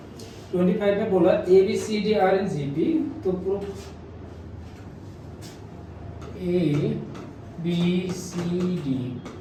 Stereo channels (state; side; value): identical; both; correlation 1.00